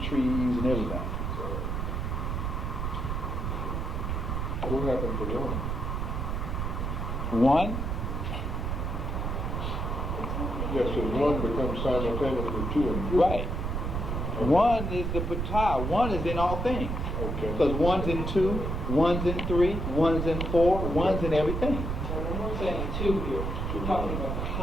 trees, and everything. What happened to one? One, Yes, so one becomes simultaneously 2 and 3. right. One is the patah. One is in all things. Okay. Because one's in 2, one's in 3, one's in 4, one's in everything. So when we're saying 2 here, we're talking about the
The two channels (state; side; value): noise; right; rumble, 2 dB below the sound